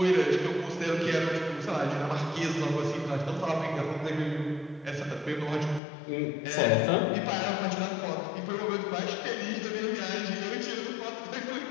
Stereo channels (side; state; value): right; drops out; at 5.8 s